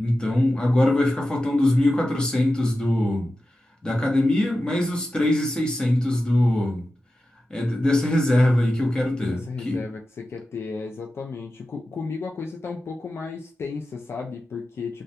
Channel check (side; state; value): both; normal; correlation 0.93